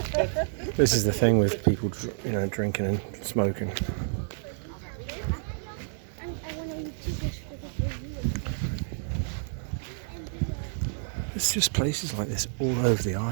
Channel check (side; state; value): left; silent; digital silence